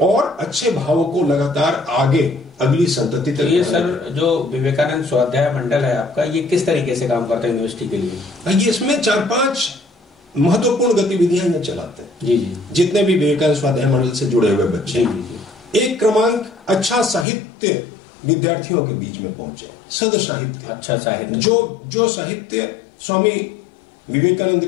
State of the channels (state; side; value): drops out; right; at 17.2 s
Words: अच्छे भावों को लगातार आगे अगली संतति तक। ये सर जो विवेकानंद स्वाध्याय मंडल है आपका, ये किस तरीके से काम करता है यूनिवर्सिटी के लिए? ये इसमें 4-5 महत्वपूर्ण गतिविधियां ये चलाते हैं। जी जी। जितने भी विवेकानंद स्वाध्याय मंडल से जुड़े हुए बच्चे। जी जी। एक क्रमांक, अच्छा साहित्य विद्यार्थियों के बीच में पहुंचे, सद साहित्य, अच्छा साहित्य, जो साहित्य स्वामी विवेकानंद